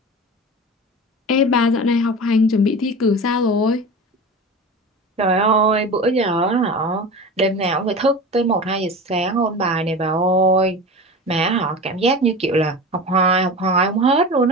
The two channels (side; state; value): both; normal; correlation 0.31